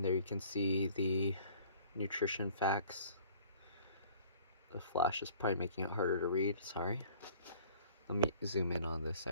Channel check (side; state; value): both; inverted; correlation -0.52